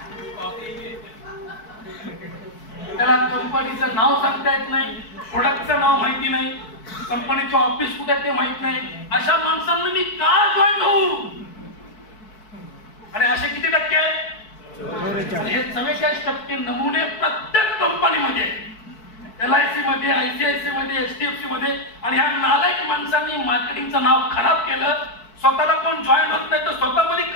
त्याला कंपनीचं नाव सांगता येत नाही, प्रोडक्टचं नाव माहिती नाही, कंपनीचं ऑफिस कुठे ते माहित नाही. अशा माणसांना मी का जॉईन होऊ? आणि असे किती टक्के आहेत? हे 44% नमुने प्रत्येक कंपनीमध्ये, LIC मध्ये, ICICI मध्ये, HDFC मध्ये. आणि ह्या नालायक माणसांनी मार्केटिंगचं नाव खराब केलं. स्वतःला कोण जॉईन होत नाही तर स्वतःमध्ये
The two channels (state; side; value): late; right; 4.6 ms